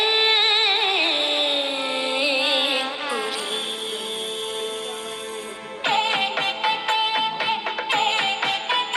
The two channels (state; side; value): identical; both; correlation 1.00